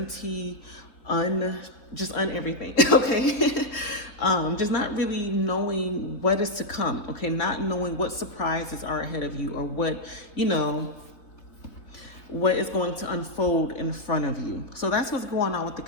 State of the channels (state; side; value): late; right; 3.7 ms